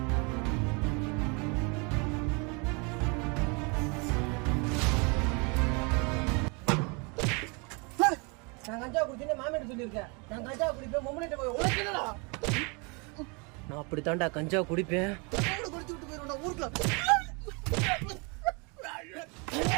நான் கஞ்சா குடிச்சேன்னு மாமியார் சொல்லியிருக்கேன். நான் கஞ்சா குடிப்பேன் மொம்மனிட்ட போய் உனக்கு என்னடா? நான் அப்படித்தான்டா கஞ்சா குடிப்பேன். குடிச்சு விட்டு போயிருவேன் ஊருக்குள்ள.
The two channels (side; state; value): left; quieter; 31.6 dB